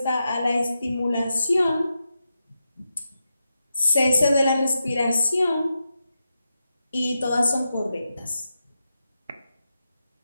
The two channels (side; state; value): both; inverted; correlation -0.88